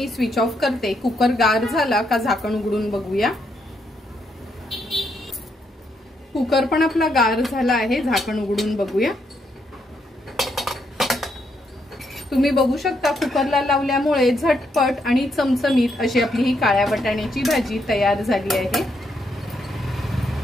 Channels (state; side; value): normal; both; correlation 0.77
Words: स्विच ऑफ करते। कुकर गार झाला का झाकण उघडून बघूया। कुकर पण आपला गार झाला आहे, झाकण उघडून बघूया। तुम्ही बघू शकता कुकरला लावल्यामुळे झटपट आणि चमचमीत अशी आपली ही काळ्या वाटाण्याची भाजी तयार झाली आहे।